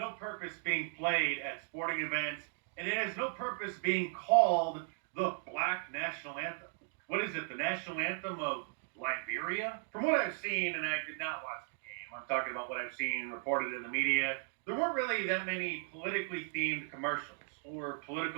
purpose being played at sporting events, and it has no purpose being called the Black National Anthem. What is it, the national anthem of Liberia? From what I've seen, and I did not watch the game, I'm talking about what I've seen reported in the media, there weren't really that many politically themed commercials or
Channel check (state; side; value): silent; left; 53 dB below the other